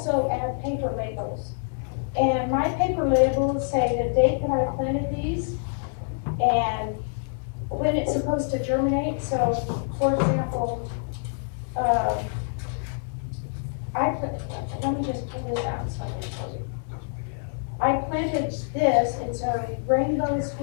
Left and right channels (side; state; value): right; silent; 61 dB below the other